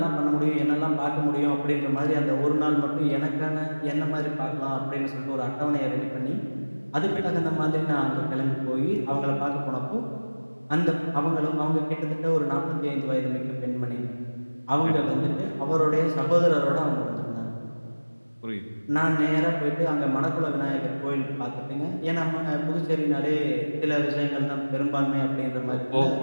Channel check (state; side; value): inverted; both; correlation -1.00